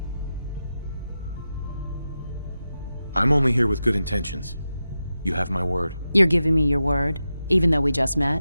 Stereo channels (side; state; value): both; inverted; correlation -0.91